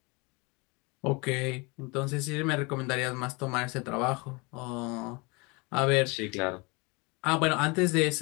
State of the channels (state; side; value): quieter; right; 28.2 dB